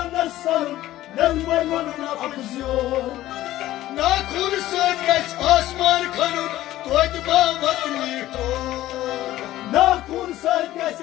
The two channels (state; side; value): quieter; right; 14.9 dB